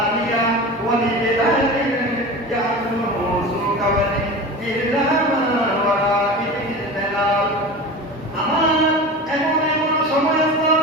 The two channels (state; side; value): normal; both; correlation 0.31